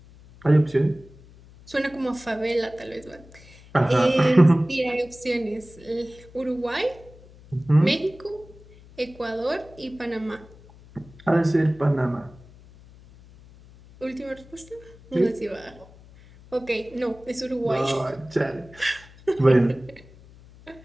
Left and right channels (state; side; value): noise; left; hum, 23 dB below the sound